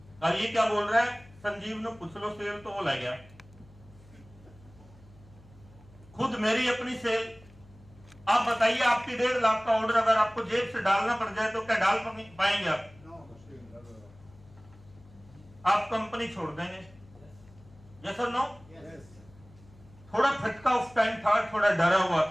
अब ये क्या बोल रहा है, संजीव ने पूछ लो सेल, तो वो ले गया। खुद मेरी अपनी सेल। आप बताइए, आपकी 1.5 लाख का ऑर्डर अगर आपको जेब से डालना पड़ जाए तो क्या डाल पाएंगे आप? आप कंपनी छोड़ देंगे। यस और नो? थोड़ा फटका उस टाइम था, थोड़ा डरा हुआ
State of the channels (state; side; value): noise; left; hum, 24 dB below the sound